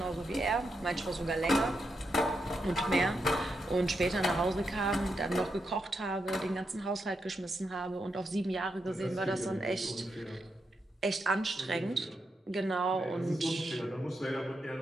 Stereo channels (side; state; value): both; normal; correlation 0.84